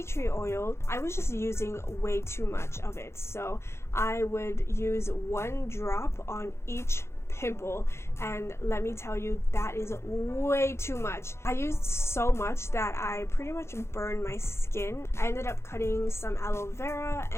tree oil, I was just using way too much of it. So I would use 1 drop on each pimple, and let me tell you, that is way too much. I used so much that I pretty much burned my skin. I ended up cutting some aloe vera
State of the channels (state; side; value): late; right; 0.13 ms